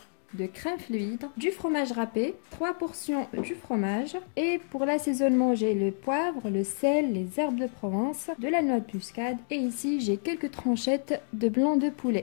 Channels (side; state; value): right; silent; 59 dB below the other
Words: de crème fluide, du fromage râpé, 3 portions du fromage et pour l'assaisonnement j'ai le poivre, le sel, les herbes de Provence, de la noix de muscade et ici j'ai quelques tranchettes de blanc de